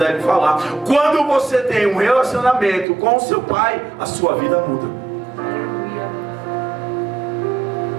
falar. Quando você tem um relacionamento com o seu Pai, a sua vida muda.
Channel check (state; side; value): drops out; left; at 2.9 s